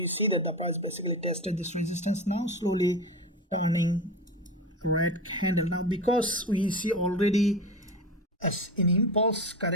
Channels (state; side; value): normal; both; correlation 0.26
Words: see that the price basically tested this resistance, now slowly turning red candle. Now because we see already as an impulse